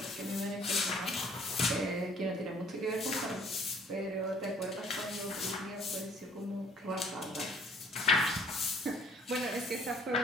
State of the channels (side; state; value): both; normal; correlation 0.58